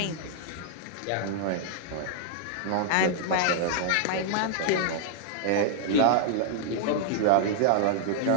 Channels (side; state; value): both; different; correlation -0.01